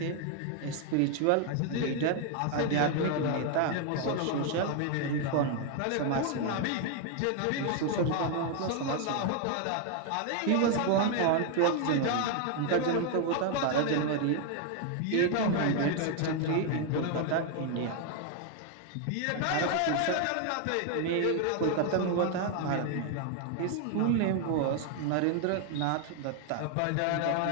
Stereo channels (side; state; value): both; different; correlation 0.00